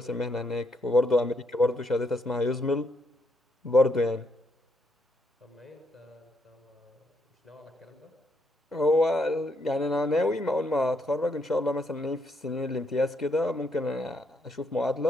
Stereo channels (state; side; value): normal; both; correlation 0.75